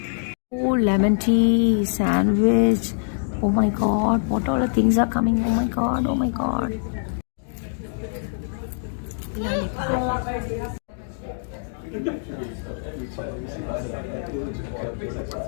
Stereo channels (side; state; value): right; silent; digital silence